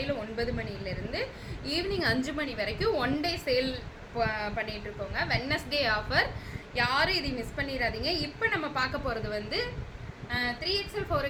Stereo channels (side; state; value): both; identical; correlation 1.00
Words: 9 மணிலேருந்து ஈவினிங் 5 மணி வரைக்கும் ஒன் டே சேல் பண்ணிட்டு இருக்கோங்க. வெட்னஸ்டே ஆஃபர், யாரும் இதை மிஸ் பண்ணிடாதீங்க. இப்போ நம்ம பார்க்க போகிறது வந்து 3XL,